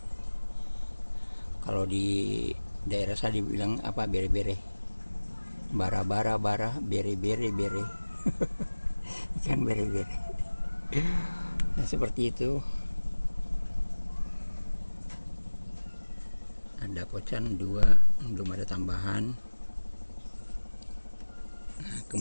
kalau di daerah saya dibilang apa, bere-bere, bara-bara, bere-bere, ikan bere-bere. Nah, seperti itu. Ada kocan 2, belum ada tambahan. Nah,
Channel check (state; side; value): inverted; both; correlation -1.00